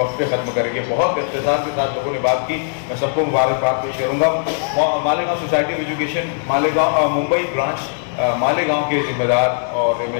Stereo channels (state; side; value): silent; right; digital silence